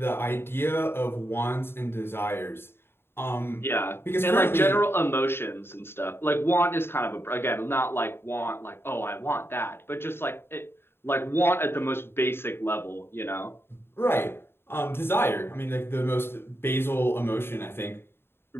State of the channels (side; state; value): right; late; 0.11 ms